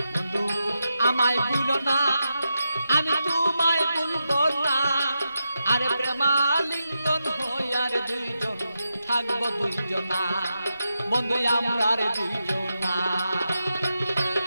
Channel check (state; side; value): inverted; both; correlation -0.87